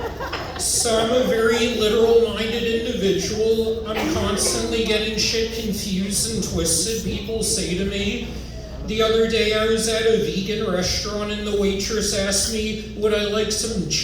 So I'm a very literal-minded individual. I'm constantly getting shit confused and twisted. People say to me, the other day I was at a vegan restaurant and the waitress asked me, would I like some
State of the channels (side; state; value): both; identical; correlation 1.00